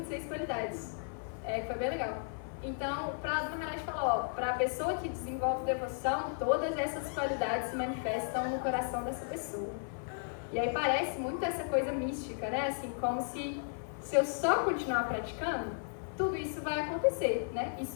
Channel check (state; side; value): silent; right; 55 dB below the other